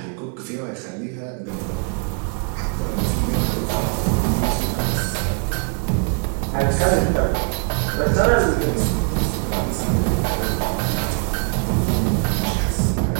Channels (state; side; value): quieter; left; 39.2 dB